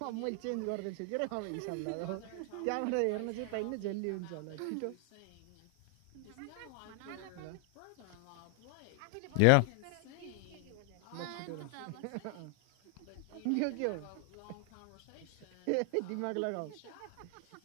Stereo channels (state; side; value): different; both; correlation 0.00